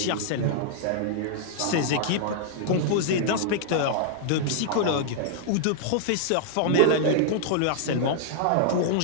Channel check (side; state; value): both; different; correlation -0.01